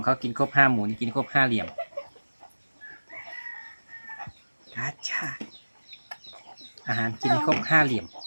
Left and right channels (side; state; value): both; inverted; correlation -1.00